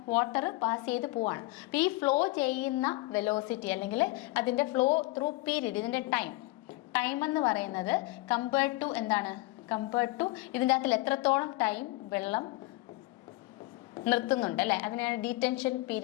വാട്ടർ പാസ് ചെയ്ത് പോവാണ്. അപ്പോൾ ഈ ഫ്ലോ ചെയ്യുന്ന വെലോസിറ്റി അല്ലെങ്കിൽ അതിൻ്റെ ഫ്ലോ ത്രൂ പീരീഡ്, ഇതിൻ്റെ ടൈം എന്ന് പറയുന്നത് കമ്പയർഡ് ടു ഇതിൻ്റെ അകത്തിൽ എത്രത്തോളം ടൈം വെള്ളം നിർത്തുന്നുണ്ട് അല്ലേ, അതിനാണ് ഡീറ്റൻഷൻ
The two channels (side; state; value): right; quieter; 20.8 dB